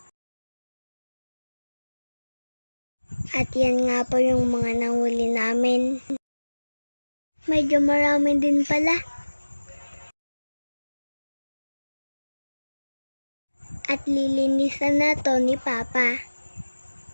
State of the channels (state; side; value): inverted; both; correlation -1.00